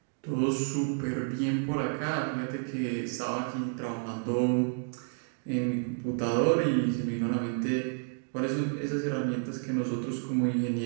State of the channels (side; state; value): left; silent; 57 dB below the other